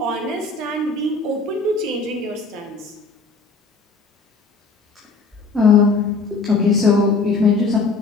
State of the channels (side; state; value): right; quieter; 4.0 dB